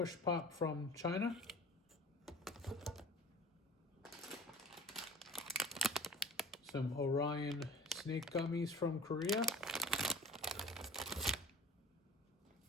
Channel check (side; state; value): both; normal; correlation 0.41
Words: Pop from China. Some Orion Snake Gummies from Korea.